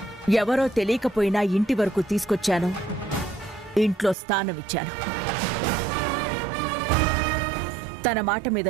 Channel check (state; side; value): drops out; left; at 4.2 s